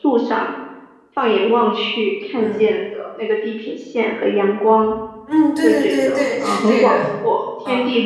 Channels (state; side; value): identical; both; correlation 1.00